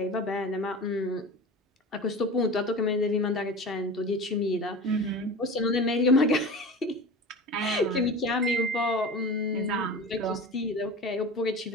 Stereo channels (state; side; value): normal; both; correlation 0.33